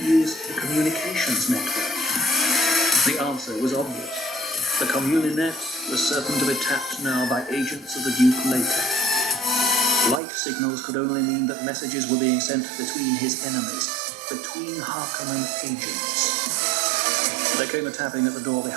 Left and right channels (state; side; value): drops out; left; at 10.2 s